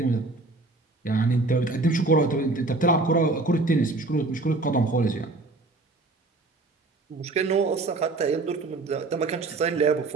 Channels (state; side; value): quieter; left; 3.3 dB